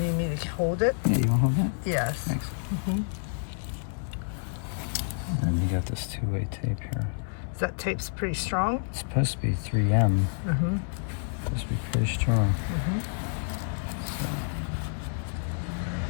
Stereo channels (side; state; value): right; silent; digital silence